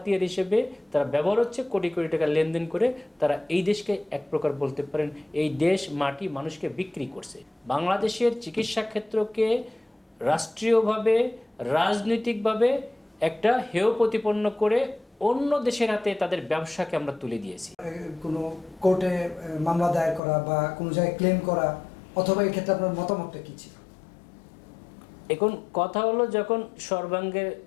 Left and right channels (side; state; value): right; drops out; at 20.2 s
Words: হিসেবে তারা ব্যবহার হচ্ছে, কোটি কোটি টাকা লেনদেন করে তারা এই দেশকে এক প্রকার বলতে পারেন এই দেশ মাটি মানুষকে বিক্রি করছে। বাংলাদেশের চিকিৎসা ক্ষেত্রকে রাষ্ট্রীয়ভাবে রাজনৈতিকভাবে একটা হেয় প্রতিপন্ন করে অন্য দেশের হাতে তাদের ব্যবসাকে আমরা তুলে দিয়েছি। কোনো কোর্টে মামলা দায়ের করা বা কোনো জায়গায় ক্লেম করা, অথবা এই ক্ষেত্রে আপনার মতামতটা কী ছিল? এখন কথা হলো, যখন সর্বাঙ্গের